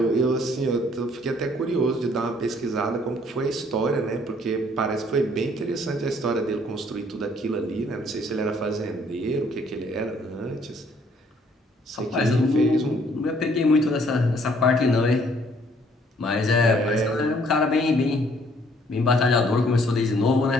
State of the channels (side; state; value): both; normal; correlation 0.63